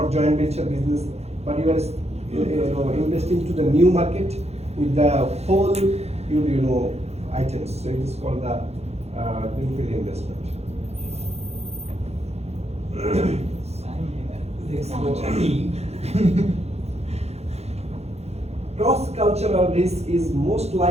joint venture business, but you are investing to the new market with the whole items. So it is called the greenfield investment. Cross-cultural risk is most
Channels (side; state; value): left; late; 0.31 ms